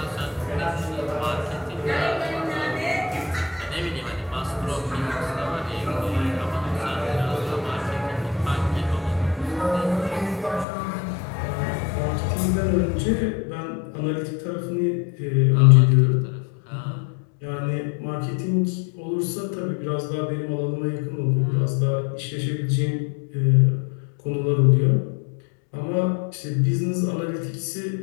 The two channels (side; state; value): right; drops out; at 10.7 s